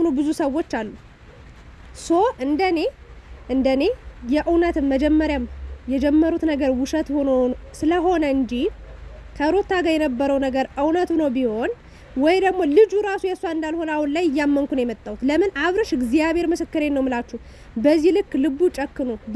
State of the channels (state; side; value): identical; both; correlation 1.00